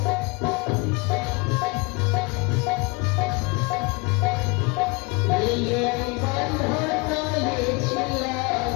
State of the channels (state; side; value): quieter; right; 27.7 dB